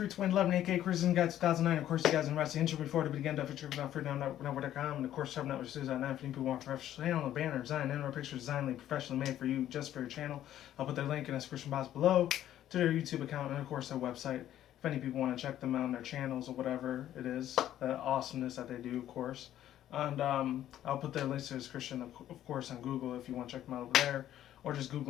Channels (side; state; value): right; quieter; 12.0 dB